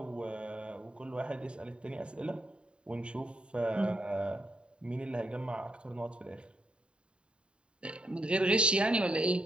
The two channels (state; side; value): late; left; 0.053 ms